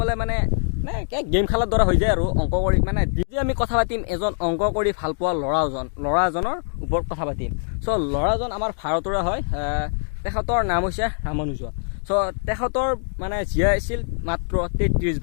মানে গেম খেলাৰ দৰে হৈ যায় আৰু অংক কৰি। মানে যদি আমি কথা পাতিম এজন অংক কৰি ভাল পোৱা ল'ৰা এজনৰ ওপৰত কথা পাতিম। চ' ল'ৰাজন আমাৰ ভাৰতৰে হয়, তেখেতৰ নাম হৈছে ৰামানুজন। চ' তেখেতৰ মানে জীয়াই আছিল মাত্ৰ 33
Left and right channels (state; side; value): silent; right; digital silence